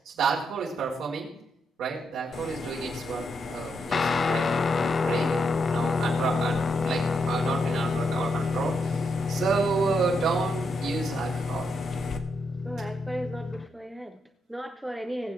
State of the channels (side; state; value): both; normal; correlation 0.80